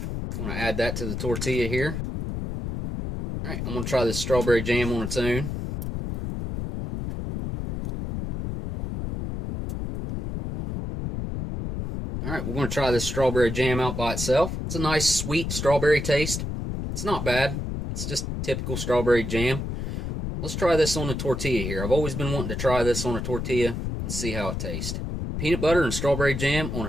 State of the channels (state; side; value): noise; left; rumble, 4 dB below the sound